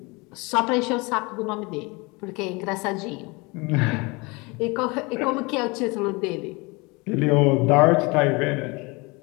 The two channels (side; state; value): right; quieter; 26.6 dB